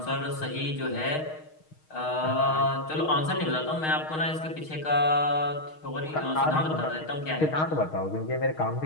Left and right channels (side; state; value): right; late; 6.4 ms